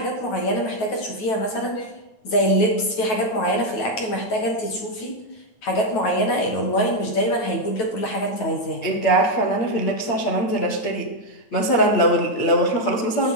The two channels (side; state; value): right; late; 9.2 ms